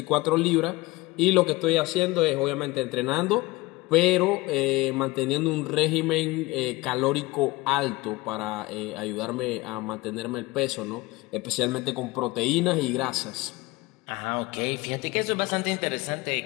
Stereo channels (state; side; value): quieter; right; 21.3 dB